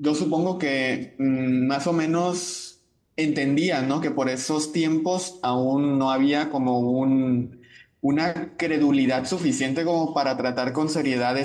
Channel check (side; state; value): both; identical; correlation 1.00